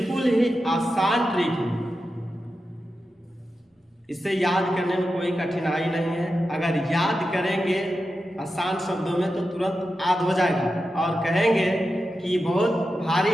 ही आसान ट्रिक है। इसे याद करने में कोई कठिनाई नहीं है। अगर याद करेंगे आसान शब्दों में तो तुरंत याद हो जाएगा और कहेंगे कि बहुत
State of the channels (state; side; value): normal; both; correlation 0.91